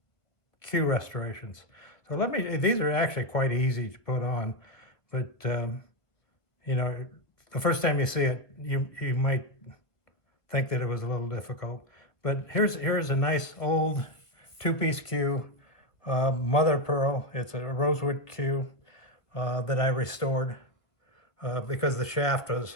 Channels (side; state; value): right; late; 1.2 ms